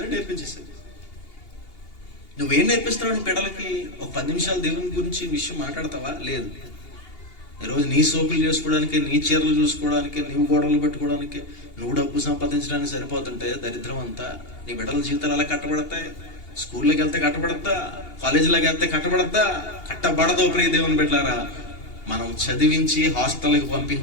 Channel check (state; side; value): late; right; 2.8 ms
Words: నేర్పించేసేది. నువ్వేం నేర్పిస్తున్నావు బిడ్డలకి? ఒక 10 నిమిషాలు దేవుని గురించి విషయం మాట్లాడతావా? లేదు. ఈరోజు నీ సోకులు చేసుకోవడానికి, నీ చీరలు చూసుకోవడానికి, నీవు గోడలు పెట్టుకోవడానికి, నువ్వు డబ్బు సంపాదించడానికి సరిపోతుంటే దరిద్రం అంతా. నీ బిడ్డల జీవితాలు ఎలా కట్టబడతాయి? స్కూల్లోకి వెళ్తే కట్టబడద్దా? కాలేజీలోకి వెళ్తే కట్టబడద్దా? కట్టబడదు. ప్రియ దేవుని బిడ్డలారా, మనం చదివించి హాస్టల్కి